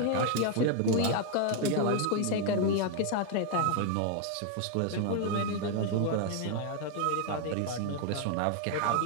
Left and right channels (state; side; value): different; both; correlation 0.00